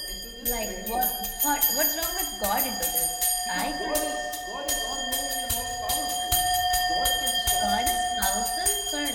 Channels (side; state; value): both; identical; correlation 1.00